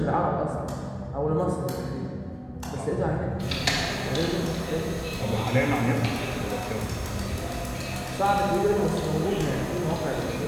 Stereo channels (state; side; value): identical; both; correlation 1.00